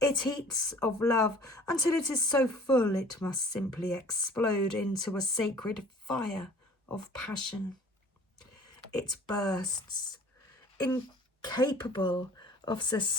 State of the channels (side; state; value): both; normal; correlation 0.49